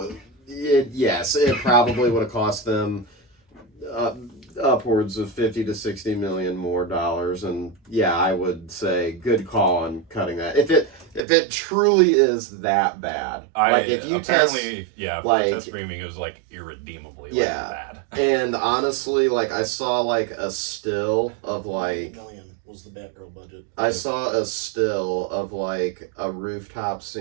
it probably would have cost them upwards of 50 to 60 million more dollars, and yeah, I would say good call on cutting that. If it truly is that bad, like if you apparently for like- the test screaming, it was like irredeemably bad. and honestly, like I saw like a still of like. $1 million was the Batgirl budget. I saw a still of like a rooftop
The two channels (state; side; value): drops out; left; at 11.2 s